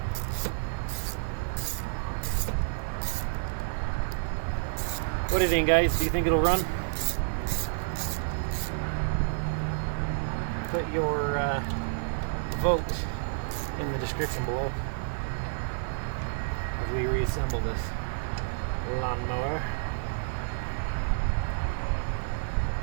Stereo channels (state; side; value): silent; left; digital silence